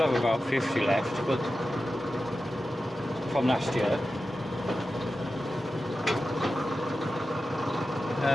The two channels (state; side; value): normal; both; correlation 0.93